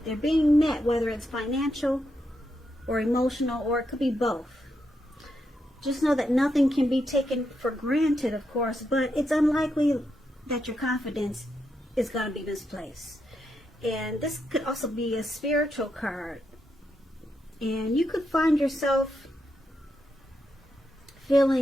they're being met, whether it's financial or emotional, or it could be both. Just know that nothing can be taken for granted, of course, but it's unlikely that your confidence is going to be misplaced. And this could also be a spiritual card. And you could find yourself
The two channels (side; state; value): both; normal; correlation 0.83